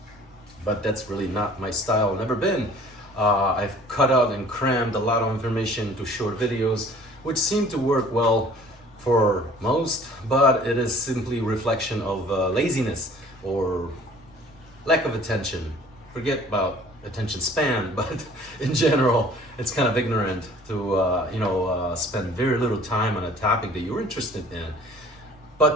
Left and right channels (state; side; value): normal; both; correlation 0.51